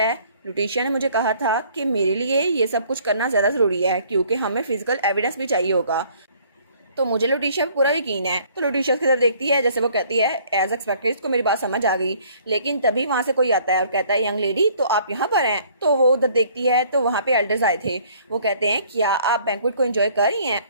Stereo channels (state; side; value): inverted; both; correlation -0.58